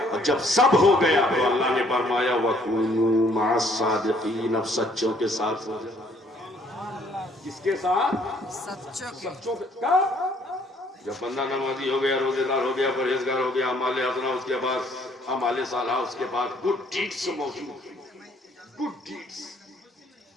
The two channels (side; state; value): both; normal; correlation 0.63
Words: اور جب سب ہو گیا تو اللہ نے فرمایا وَكُونُوا مَعَ الصَّادِقِينَ، اب سچوں کے ساتھ ہو جائے۔ کس کے ساتھ؟ سچوں کے ساتھ۔ جب بندہ نمازی ہو گیا، روزے دار ہو گیا، پرہیزگار ہو گیا، اعمال حسنہ اس کے بعد، اعمال صالحہ اس کے بعد، گڈ ڈیڈز موجود ہیں، گڈ ڈیڈز